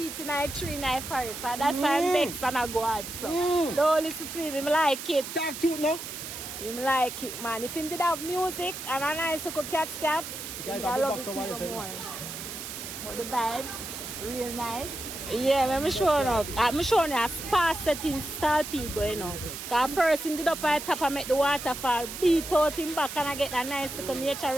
in a tree in a forest. So that's why I'm vexed and I go out. So don't listen to him like it. Talk to no? Him like it, man. If him did have music and a nice little cat scap, I love it even more. But the vibes, real nice. Yeah, I'm showing up. I'm showing you a spa setting style people, you know. Because first him did up at the top and make the waterfall, beat out him back and I get a nice little nature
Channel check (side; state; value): right; noise; hiss, 8 dB below the sound